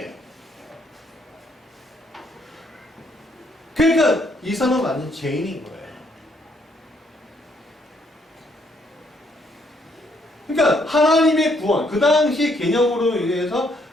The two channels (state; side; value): normal; both; correlation 0.70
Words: 그러니까 이 사람은 완전 죄인인 거예요. 그러니까 하나님의 구원, 그 당시 개념으로 의해서